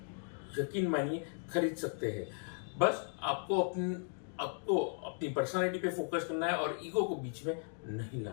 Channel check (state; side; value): silent; right; 53 dB below the other